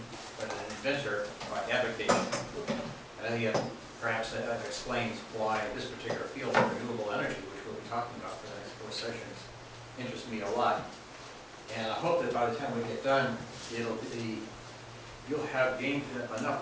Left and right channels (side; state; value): both; identical; correlation 1.00